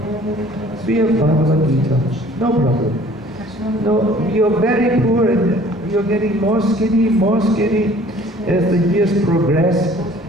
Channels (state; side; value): normal; both; correlation 0.52